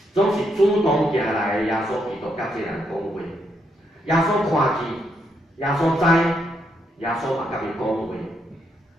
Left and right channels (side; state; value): both; normal; correlation 0.78